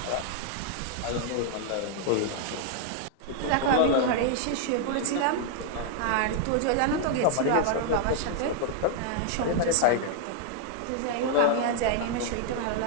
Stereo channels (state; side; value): different; both; correlation 0.00